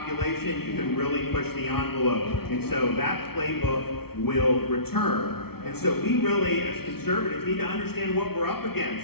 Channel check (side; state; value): right; late; 0.95 ms